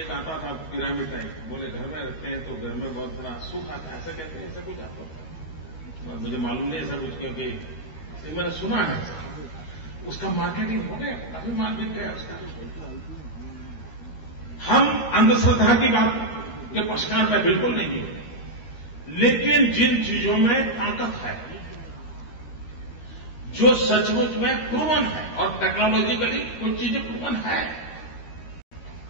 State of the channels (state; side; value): late; right; 13 ms